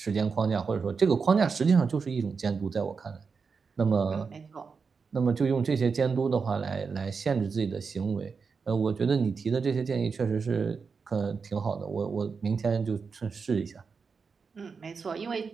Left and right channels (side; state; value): left; quieter; 5.2 dB